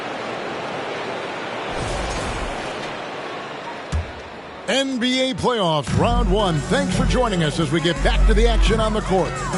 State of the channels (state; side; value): identical; both; correlation 1.00